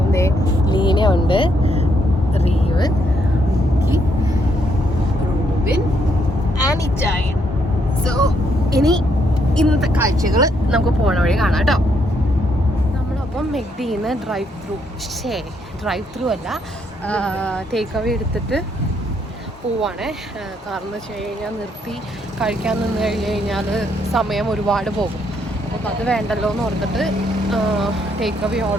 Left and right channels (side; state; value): both; normal; correlation 0.74